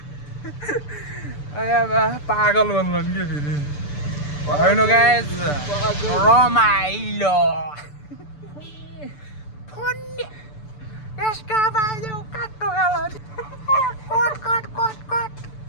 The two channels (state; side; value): late; right; 6.8 ms